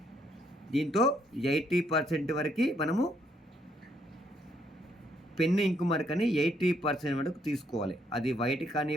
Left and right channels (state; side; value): normal; both; correlation 0.72